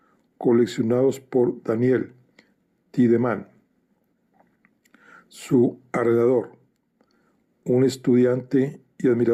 coleccionados por Daniel Tiedemann. Su arrendador, un estudiante y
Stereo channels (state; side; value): identical; both; correlation 1.00